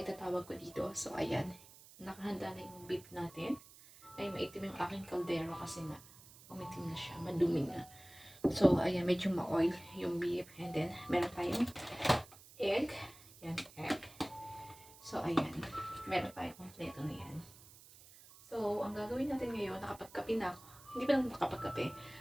ko dito. So, ayan. Nakahanda na yung beef natin. Ay, maitim yung aking kaldero kasi nga umitim na siya. Madumi na. So, ayan. Medyo ma-oil yung beef. And then, meron tayong egg. Yan, egg. So, ayan. Meron tayong kompleto na yan. So, ang gagawin natin ngayon, nakapagkape na ako. Hindi pa naman nakapagkape.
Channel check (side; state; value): right; noise; hiss, 20 dB below the sound